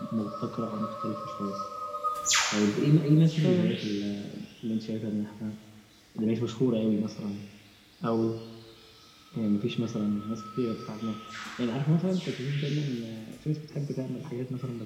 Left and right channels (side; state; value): both; identical; correlation 1.00